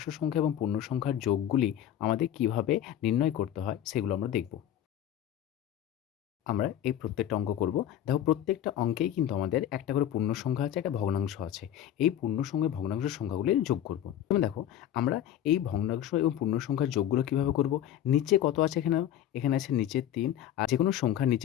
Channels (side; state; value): right; quieter; 11.1 dB